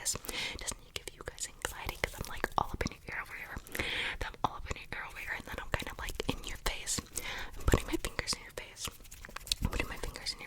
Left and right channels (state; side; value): identical; both; correlation 1.00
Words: Doesn't it give you guys anxiety? Because I'm like all up in your ear over here. Then I'm all up in your ear over here, and then I'm kind of like in your face. I'm putting my fingers in your